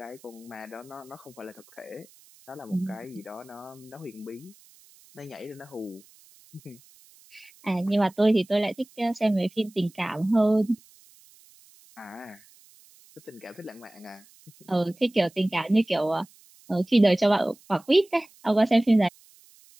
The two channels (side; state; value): right; noise; hiss, 27 dB below the sound